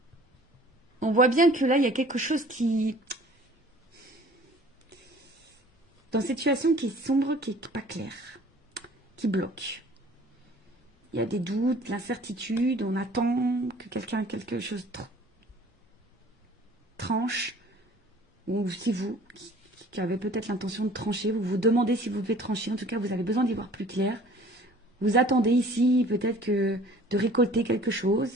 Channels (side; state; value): both; normal; correlation 0.50